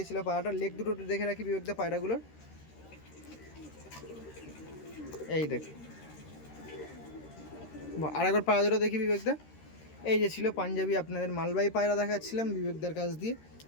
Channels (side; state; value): right; late; 13 ms